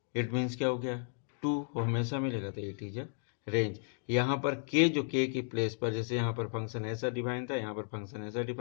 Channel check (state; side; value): silent; right; digital silence